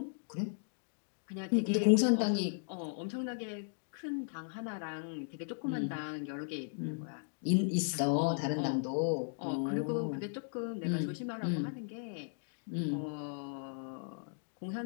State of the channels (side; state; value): right; silent; digital silence